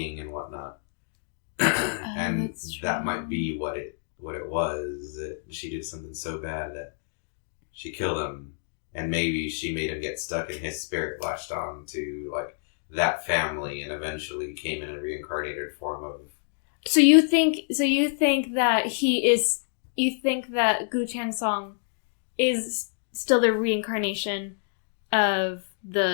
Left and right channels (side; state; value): right; silent; digital silence